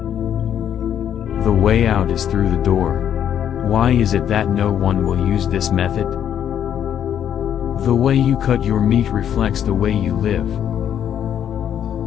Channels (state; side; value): quieter; right; 9.6 dB